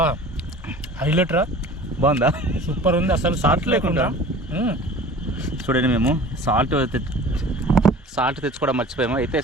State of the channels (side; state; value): both; normal; correlation 0.43